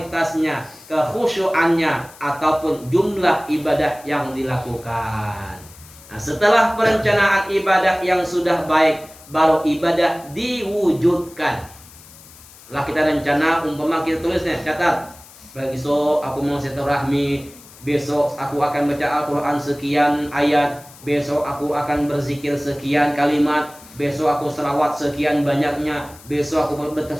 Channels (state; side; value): noise; left; hiss, 21 dB below the sound